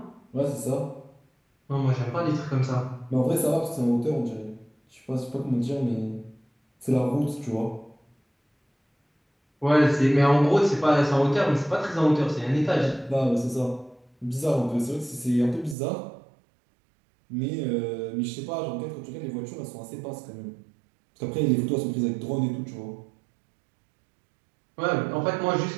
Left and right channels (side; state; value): left; drops out; at 15.8 s